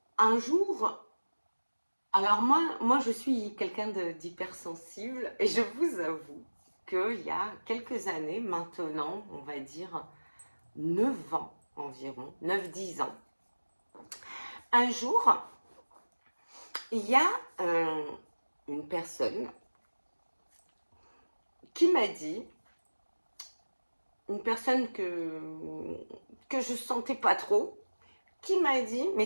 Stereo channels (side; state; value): both; inverted; correlation -1.00